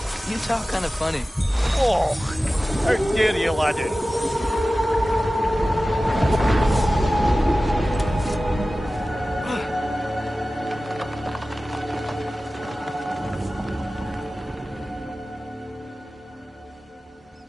you talk kind of funny. Oh, how dare you, laddie?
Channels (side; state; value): both; normal; correlation 0.96